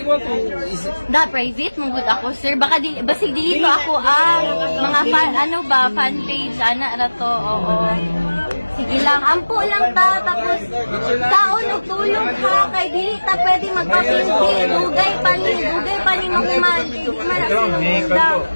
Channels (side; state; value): both; inverted; correlation -1.00